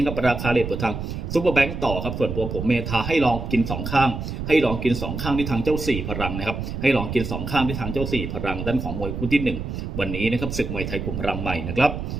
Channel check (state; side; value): noise; right; rumble, 5 dB below the sound